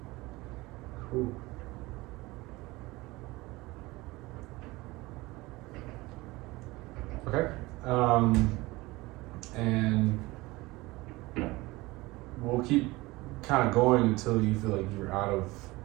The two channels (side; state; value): left; quieter; 21.1 dB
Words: Cool. Okay. And we'll keep kind of going until you feel like you're out of